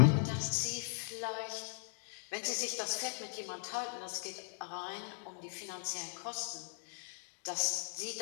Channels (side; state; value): right; silent; 52 dB below the other